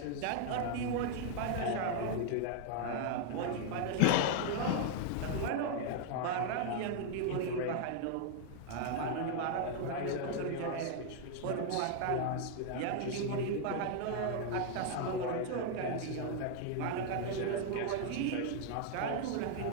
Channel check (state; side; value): different; both; correlation 0.00